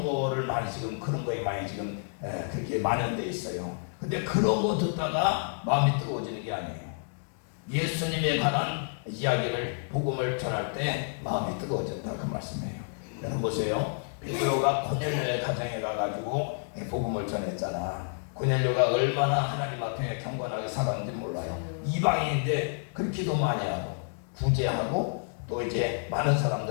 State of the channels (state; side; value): silent; right; 58 dB below the other